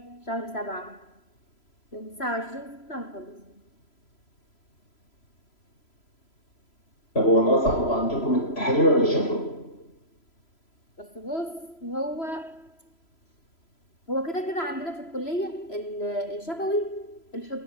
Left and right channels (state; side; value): late; right; 3.0 ms